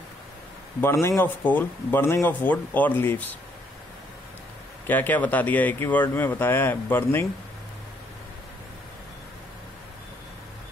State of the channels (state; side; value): normal; both; correlation 0.69